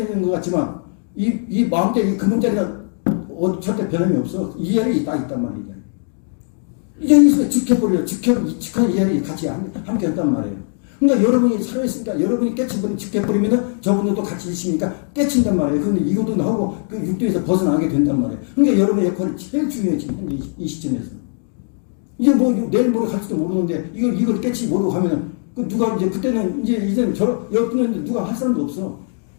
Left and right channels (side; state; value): right; silent; 55 dB below the other